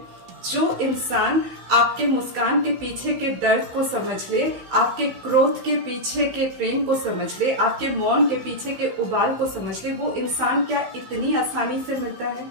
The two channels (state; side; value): late; left; 15 ms